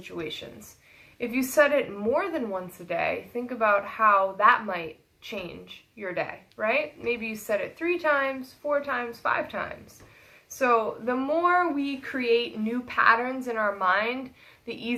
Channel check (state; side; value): identical; both; correlation 1.00